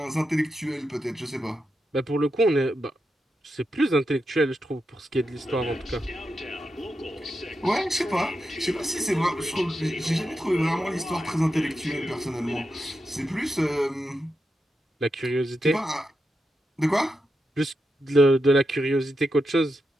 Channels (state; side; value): normal; both; correlation 0.87